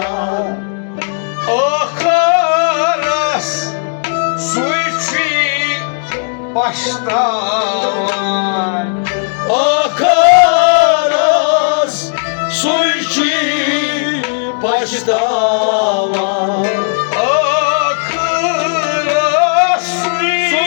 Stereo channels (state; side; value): silent; right; digital silence